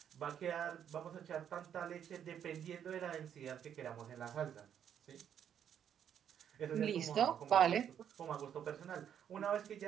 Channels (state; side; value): quieter; left; 9.1 dB